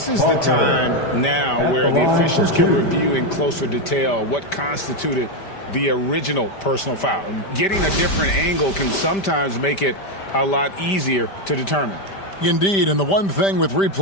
is the time now where the officials can review in closer detail what constituted the original personal foul. Getting a different angle can sometimes make it a lot easier to determine. Indeed, and the one thing with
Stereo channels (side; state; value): right; late; 5.1 ms